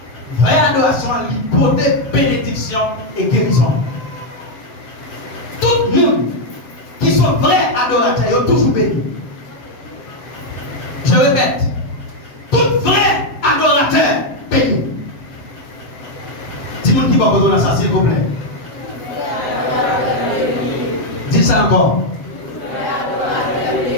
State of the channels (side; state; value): right; late; 7.7 ms